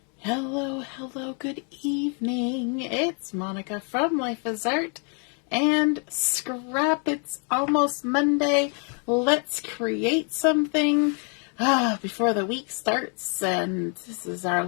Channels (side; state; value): right; quieter; 39.1 dB